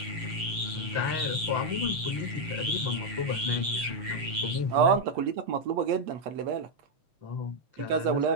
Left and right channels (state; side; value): late; left; 7.1 ms